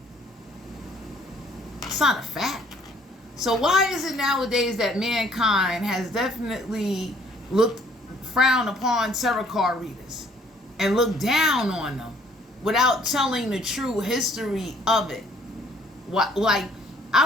It's not a fact. So why is it nowadays that mankind has definitely frowned upon tarot card readers and looked down on them without telling the true history of it? Like,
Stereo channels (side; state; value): both; normal; correlation 0.61